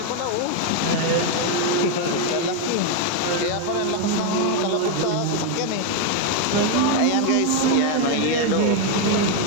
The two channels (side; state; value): both; different; correlation 0.01